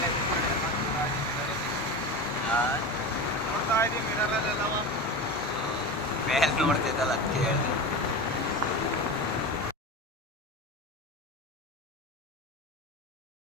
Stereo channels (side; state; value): both; normal; correlation 0.25